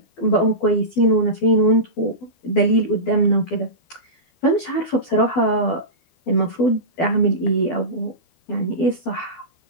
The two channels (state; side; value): late; right; 12 ms